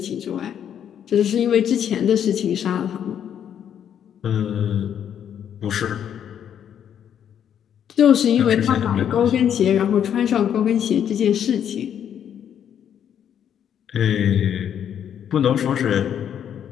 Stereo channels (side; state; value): right; quieter; 9.2 dB